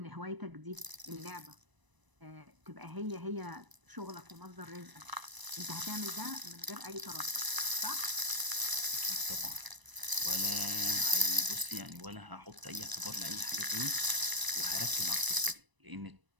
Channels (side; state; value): left; late; 1.0 ms